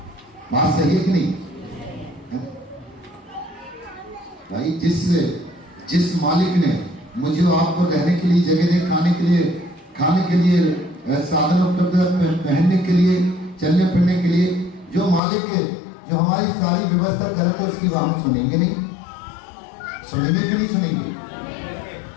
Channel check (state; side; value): drops out; right; at 15.2 s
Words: बात सही है कि नहीं? भाई जिस मालिक ने मुझे आपको रहने के लिए जगह दे, खाने के लिए साधन उपलब्ध, पहनने के लिए, चलने फिरने के लिए, जो मालिक है, जो हमारी सारी व्यवस्था करे, तो उसकी हम सुनेंगे नहीं? सुनेंगे कि नहीं सुनेंगे?